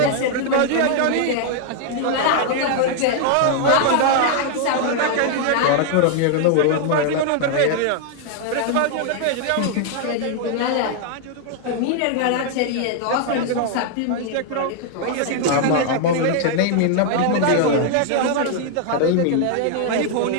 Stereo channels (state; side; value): different; both; correlation 0.00